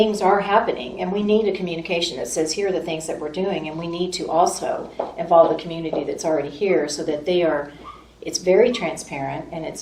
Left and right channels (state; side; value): identical; both; correlation 1.00